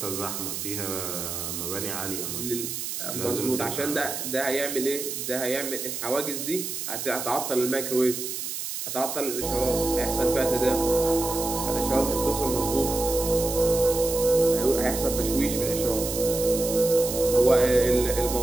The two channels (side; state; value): right; noise; hiss, 5 dB below the sound